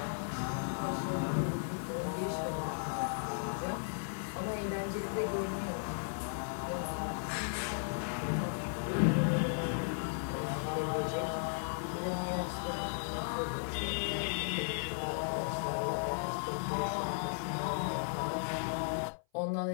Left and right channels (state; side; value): silent; right; 54 dB below the other